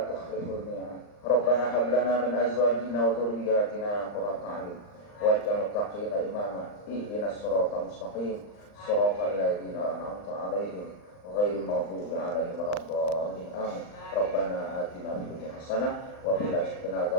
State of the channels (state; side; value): late; right; 39 ms